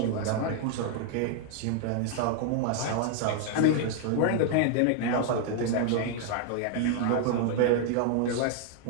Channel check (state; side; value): different; both; correlation 0.00